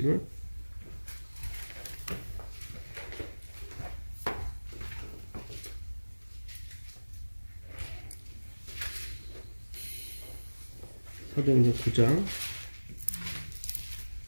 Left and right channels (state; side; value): inverted; both; correlation -1.00